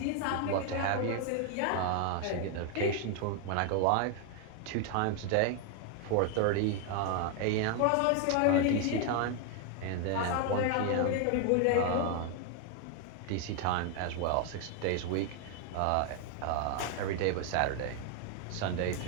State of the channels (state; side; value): different; both; correlation 0.00